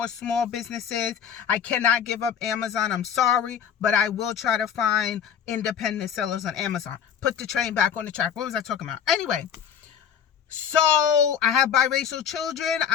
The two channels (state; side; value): quieter; right; 8.2 dB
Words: small businesses. I cannot give up Amazon. I'm sorry, but I will try to find independent sellers on Amazon. Put the train back on the track. What was I talking about? Anyway. So I have biracial children.